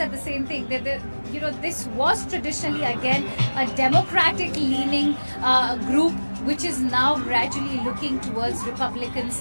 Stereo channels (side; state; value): both; inverted; correlation -1.00